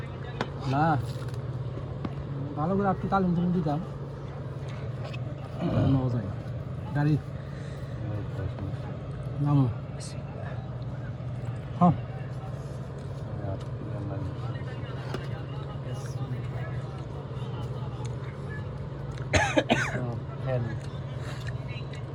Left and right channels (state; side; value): identical; both; correlation 1.00